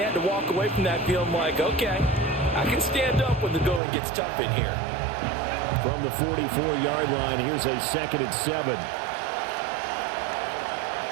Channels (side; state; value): left; drops out; at 3.8 s